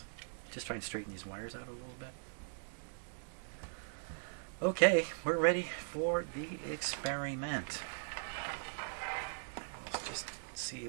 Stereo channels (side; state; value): left; silent; digital silence